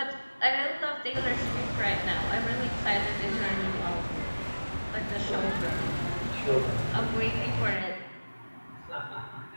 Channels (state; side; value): inverted; both; correlation -1.00